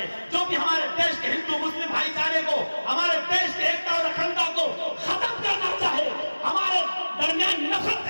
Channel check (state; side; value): inverted; both; correlation -1.00